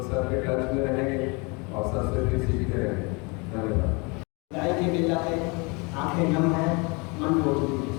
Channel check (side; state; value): right; quieter; 29.7 dB